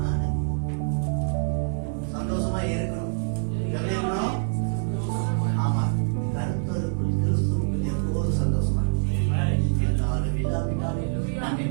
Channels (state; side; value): silent; left; digital silence